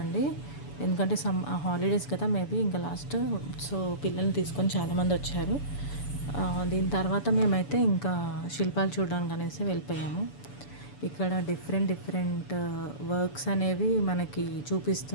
ఎందుకంటే హాలిడేస్ కదా, మేబీ ఇంకా లాస్ట్. సో పిల్లల్ని తీసుకొని చాలామంది వచ్చారు. దీని తర్వాత మేమైతే ఇంకా శిల్పాలు చూడడానికి అనేసి వెళ్ళిపోయాము. ఇక్కడ డిఫరెంట్ డిఫరెంట్ వర్క్స్ అనేవి మనకి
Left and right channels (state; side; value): late; right; 7.0 ms